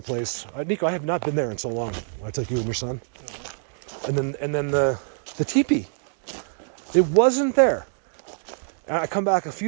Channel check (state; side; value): silent; left; digital silence